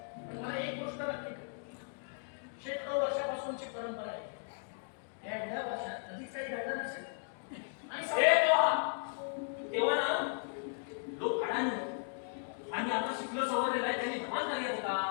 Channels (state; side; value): silent; right; digital silence